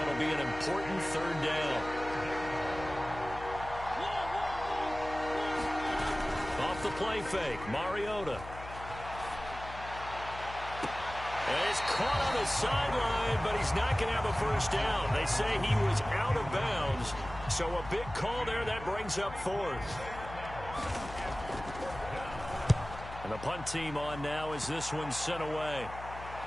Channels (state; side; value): noise; left; hum, 13 dB below the sound